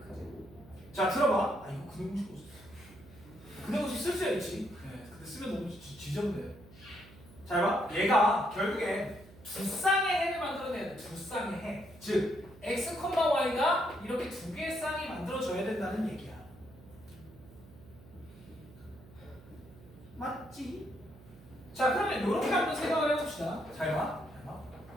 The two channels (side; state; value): right; noise; hum, 21 dB below the sound